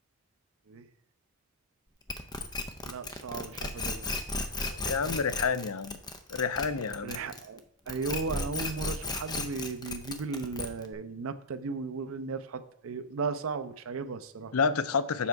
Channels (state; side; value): normal; both; correlation -0.10